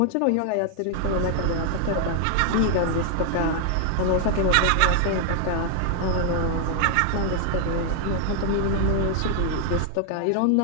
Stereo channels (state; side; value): different; both; correlation 0.00